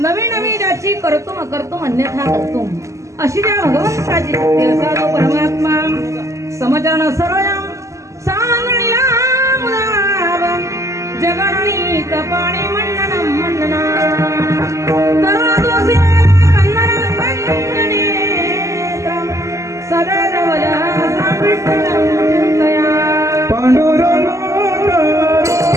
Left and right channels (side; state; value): left; late; 0.15 ms